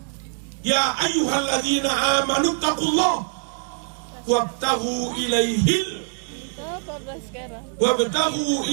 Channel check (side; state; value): left; silent; digital silence